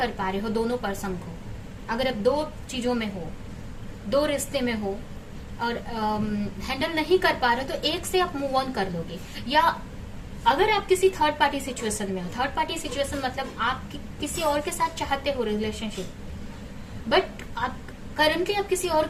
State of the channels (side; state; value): both; identical; correlation 1.00